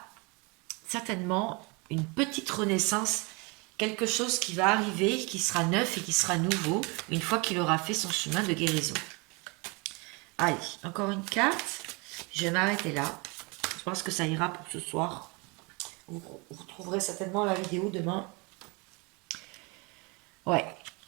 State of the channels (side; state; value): left; quieter; 28.9 dB